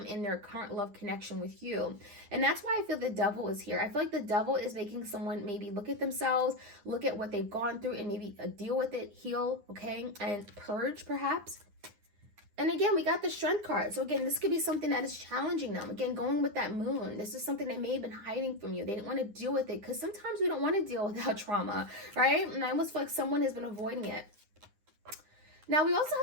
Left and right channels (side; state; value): left; late; 9.8 ms